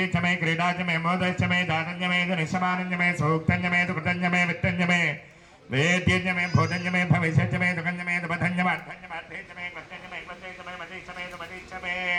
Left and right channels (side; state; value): both; identical; correlation 1.00